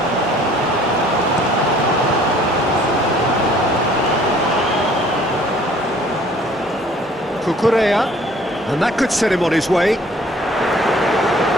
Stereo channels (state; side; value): normal; both; correlation 0.55